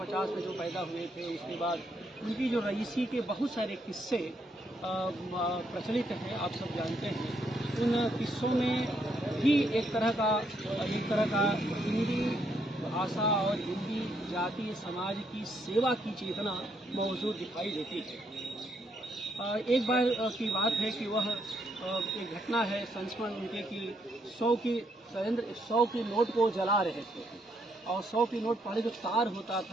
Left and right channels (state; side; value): normal; both; correlation 0.74